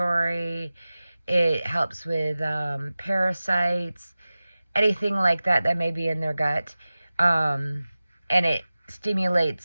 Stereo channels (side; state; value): both; inverted; correlation -0.97